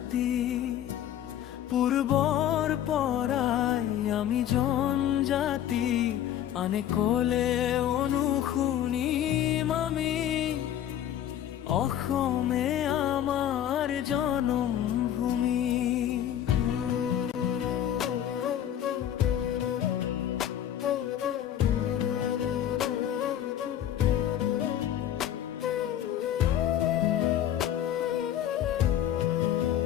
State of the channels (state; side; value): quieter; right; 10.9 dB